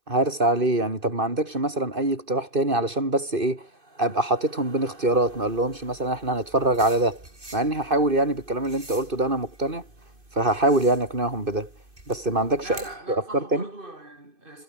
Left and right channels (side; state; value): left; late; 2.5 ms